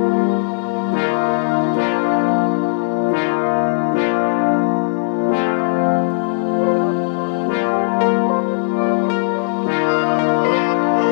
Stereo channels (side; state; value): right; silent; digital silence